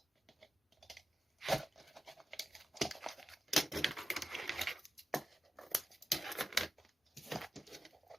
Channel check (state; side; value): normal; both; correlation 0.91